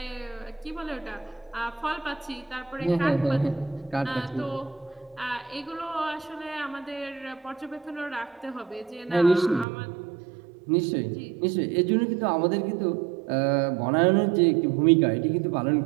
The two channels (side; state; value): left; drops out; at 9.7 s